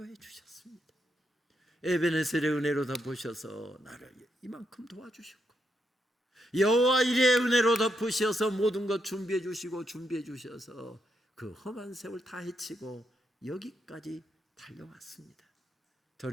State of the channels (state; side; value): normal; both; correlation 0.80